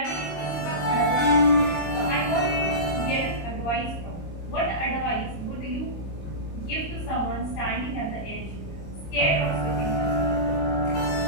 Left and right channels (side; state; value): right; late; 26 ms